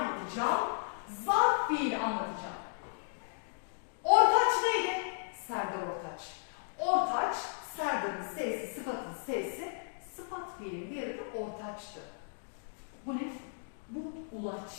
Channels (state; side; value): silent; right; digital silence